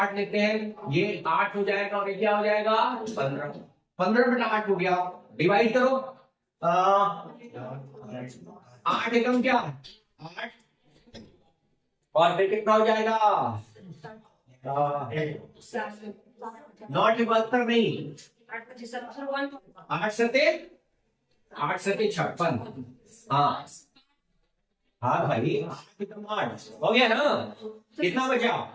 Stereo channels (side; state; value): both; identical; correlation 1.00